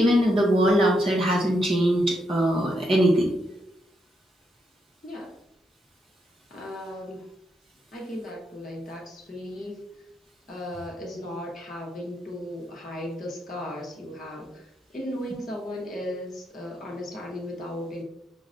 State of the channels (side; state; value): both; normal; correlation 0.80